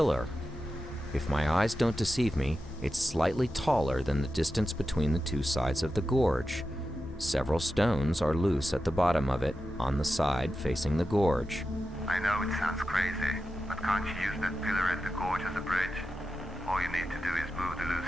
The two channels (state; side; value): normal; both; correlation 0.91